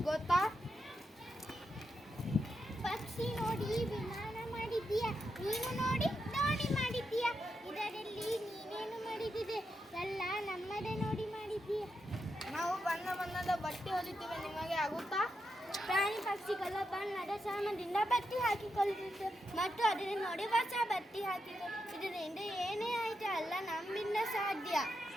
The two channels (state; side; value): normal; both; correlation 0.85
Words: ಗೊತ್ತಾ? ಪಕ್ಷಿ ನೋಡಿ ವಿಮಾನ ಮಾಡಿದ್ದೀಯ, ನೀನು ನೋಡಿ ದೋಣಿ ಮಾಡಿದ್ದೀಯ. ಇದರಲ್ಲಿ ನೀನೇನು ಮಾಡಿದಿದೆ? ಎಲ್ಲ ನಮ್ಮದೇ ನೋಡಿ ಮಾಡಿದ್ದೀಯ. ನಾವು ಬಣ್ಣ ಬಣ್ಣದ ಬಟ್ಟೆ ಹೊಲಿತೇವೆ, ನಿಮಗೆ ಆಗುತ್ತಾ? ಪ್ರಾಣಿ ಪಕ್ಷಿಗಳ ಬಣ್ಣದ ಶ್ರಮದಿಂದ ಬತ್ತಿ ಹಾಕಿಕೊಳ್ಳುತ್ತಿತ್ತು ಮತ್ತು ಅದನ್ನು ನೋಡಿ ಹೊಸ ಬತ್ತಿ ಹಾಕಿತು. ಇದರಿಂದ ಏನೇ ಆಯಿತು ಅಲ್ಲ ನಮ್ಮಿಂದ ಸಾಧ್ಯ.